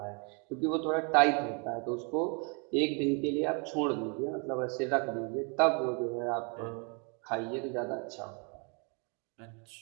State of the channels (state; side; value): quieter; left; 35.7 dB